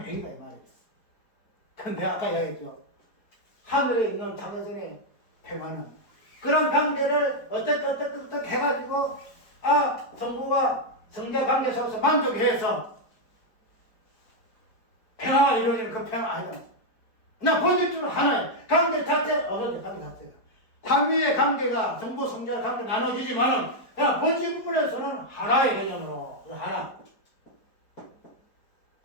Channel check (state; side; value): late; right; 4.5 ms